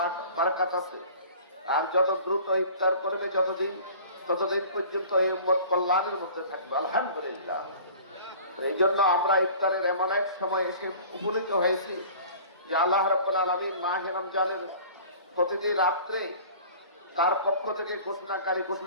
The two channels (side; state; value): both; inverted; correlation -0.44